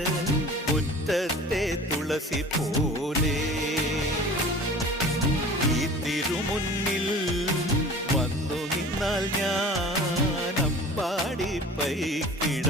മുറ്റത്തെ തുളസി പോലെ ഈ തിരുമുന്നിൽ വന്നു നിന്നാൽ ഞാൻ അമ്പാടി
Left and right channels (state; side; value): normal; both; correlation 0.42